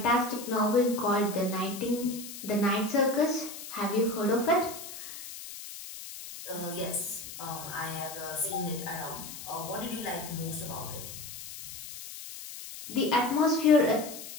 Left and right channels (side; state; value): left; noise; hiss, 11 dB below the sound